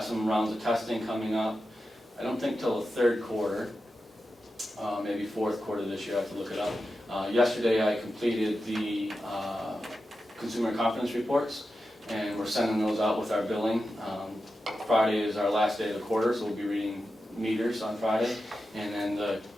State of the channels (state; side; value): normal; both; correlation 0.91